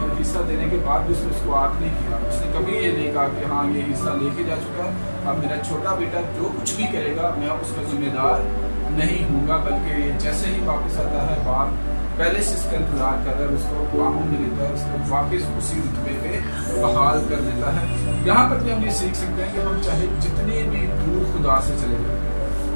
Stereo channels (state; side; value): inverted; both; correlation -1.00